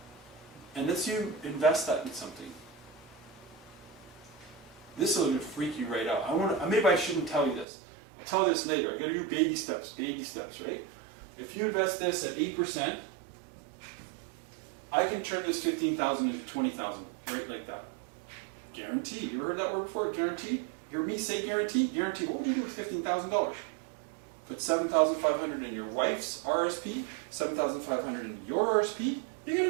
And let's you invest that in something. This will freak you right out. Maybe I shouldn't tell you this. I'll tell you this later. I got to do baby steps, right? If you invest this at 8%, I can turn this 15,000 into 20,000, right like that. Guarantee. You ever heard that word before? Guarantee. You hear me say guarantee? Guarantee. What would you do with $15,000? Put 7,500 in your wife's RSP, 7,500 in your RSP. You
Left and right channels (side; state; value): left; drops out; at 7.7 s